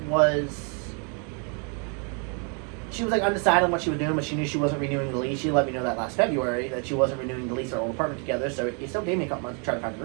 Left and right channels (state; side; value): quieter; left; 37.7 dB